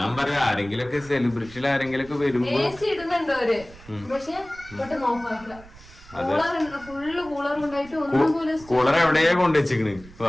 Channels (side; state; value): right; noise; rumble, 21 dB below the sound